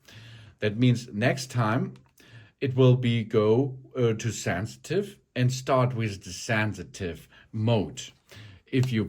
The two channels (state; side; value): identical; both; correlation 1.00